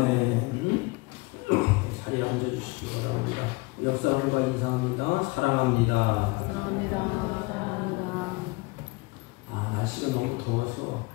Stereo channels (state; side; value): quieter; right; 25.3 dB